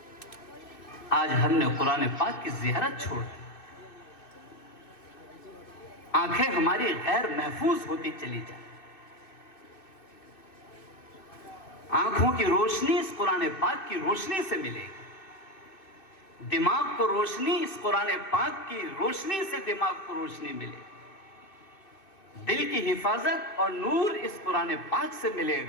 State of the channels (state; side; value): late; right; 2.5 ms